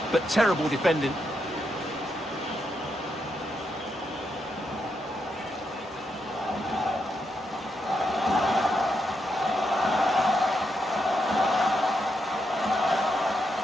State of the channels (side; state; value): both; normal; correlation 0.82